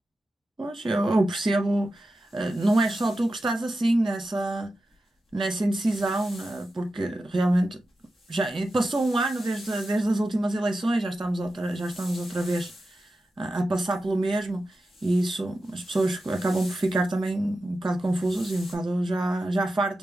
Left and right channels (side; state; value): both; normal; correlation 0.91